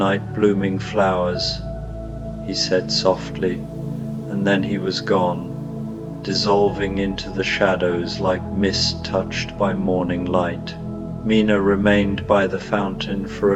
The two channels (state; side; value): identical; both; correlation 1.00